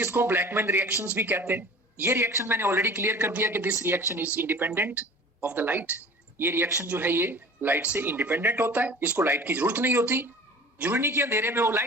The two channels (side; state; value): both; normal; correlation 0.42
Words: ब्लैकमैन रिएक्शंस भी कहते हैं। ये रिएक्शन मैंने ऑलरेडी क्लियर कर दिया कि this reaction is independent of the light. ये रिएक्शन जो है ये लाइट से इंडिपेंडेंट होता है, इसको लाइट की जरूरत नहीं होती। जरूरी नहीं कि अंधेरे में हो,